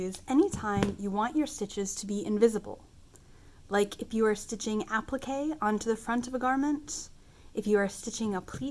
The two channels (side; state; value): both; identical; correlation 1.00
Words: anytime you want your stitches to be invisible. Like if you are stitching applique onto the front of a garment, if you are stitching a